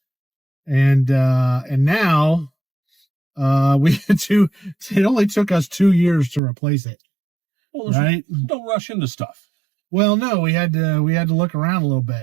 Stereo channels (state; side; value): drops out; left; at 6.4 s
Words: And now we had to. It only took us 2 years to replace it. Well, right? Don't rush into stuff. Well, no, we had to look around a little